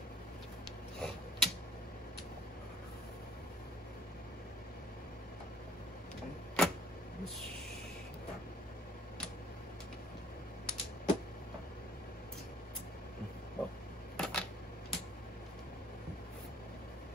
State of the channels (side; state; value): both; normal; correlation 0.56